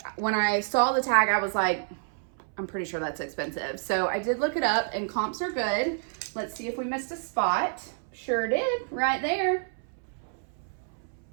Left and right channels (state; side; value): silent; left; 59 dB below the other